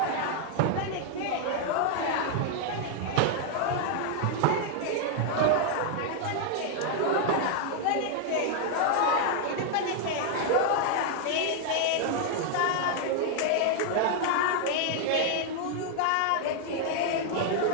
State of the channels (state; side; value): different; both; correlation 0.00